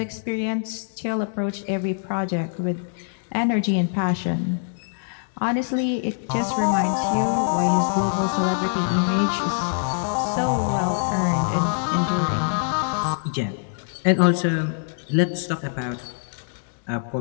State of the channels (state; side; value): silent; right; digital silence